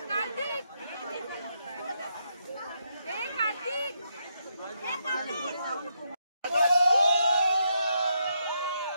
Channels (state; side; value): inverted; both; correlation -0.80